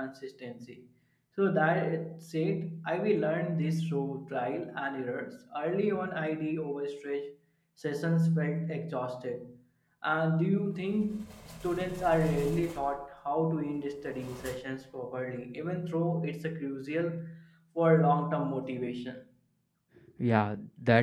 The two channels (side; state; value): both; identical; correlation 1.00